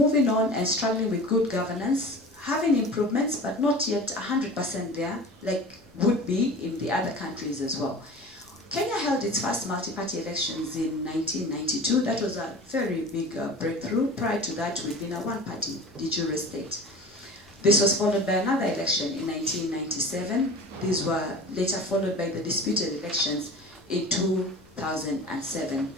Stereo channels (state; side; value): normal; both; correlation 0.37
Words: on and struggling with good governance, having improvements, but not yet 100% there, like would be in the other countries as well. Kenya held its first multi-party elections in 1992. That was a very big breakthrough. Prior to that, we'd been a one-party de jure state. This was followed by another election in 1997. These were later followed by the disputed elections in 2007.